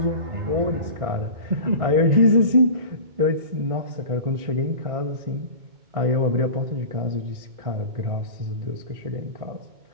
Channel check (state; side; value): late; left; 1.6 ms